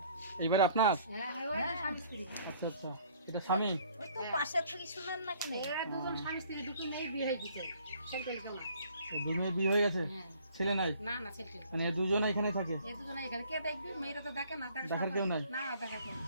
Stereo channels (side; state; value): both; inverted; correlation -0.57